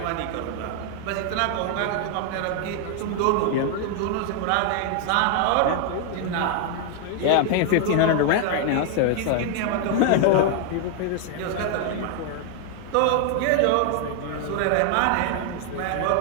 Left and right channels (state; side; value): different; both; correlation 0.00